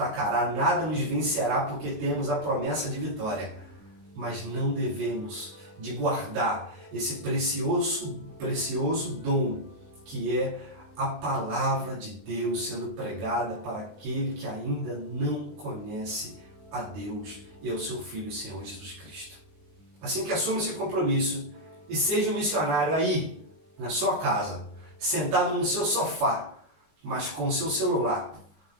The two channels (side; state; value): left; late; 20 ms